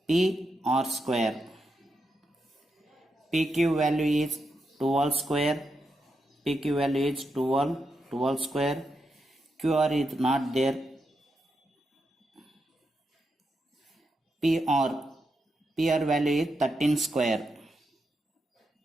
PR square. PQ value is 12 square. PQ value is 12 square. QR is not there. PR value is 13 square.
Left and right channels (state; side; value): normal; both; correlation 0.85